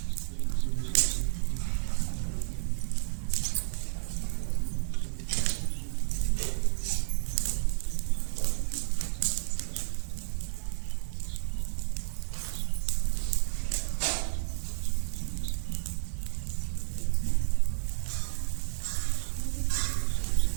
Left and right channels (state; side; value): silent; left; digital silence